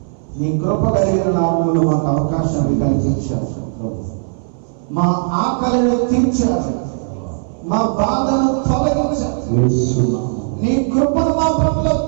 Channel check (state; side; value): silent; left; 58 dB below the other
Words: నీ కృప కలిగిన నామములు మాకు అవకాశాన్ని కల్పించారు. మా ఆకలిని తీర్చారు, మా బాధను తొలగించారు, నీ కృపను మా పట్ల